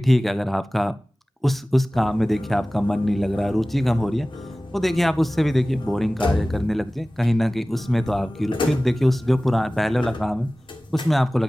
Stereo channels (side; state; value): both; normal; correlation 0.98